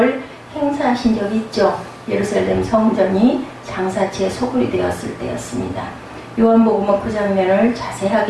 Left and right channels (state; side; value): identical; both; correlation 1.00